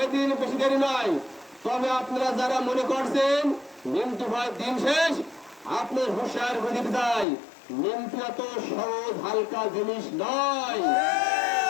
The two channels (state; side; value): drops out; right; at 7.2 s